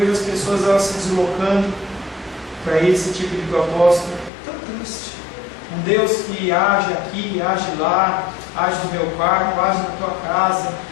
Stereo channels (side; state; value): right; drops out; at 4.3 s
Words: as pessoas elas se deslocando para esse tipo de propósito. Tão triste. Um Deus que age aqui, age lá, age no meu quarto, age na tua casa,